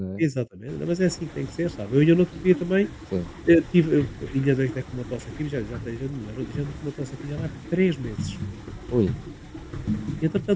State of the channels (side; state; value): both; identical; correlation 1.00